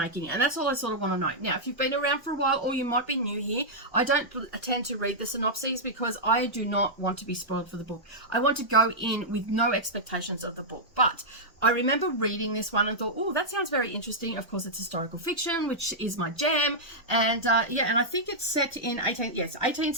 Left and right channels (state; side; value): normal; both; correlation -0.08